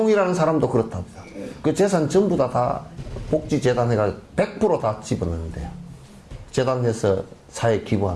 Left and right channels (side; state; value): both; identical; correlation 1.00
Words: 사람도 그렇답니다. 그 재산 전부 다 복지재단 해가 100% 집어넣는데요. 재단해서 사회에